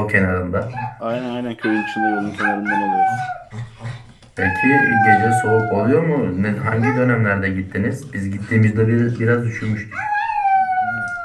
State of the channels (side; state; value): both; identical; correlation 1.00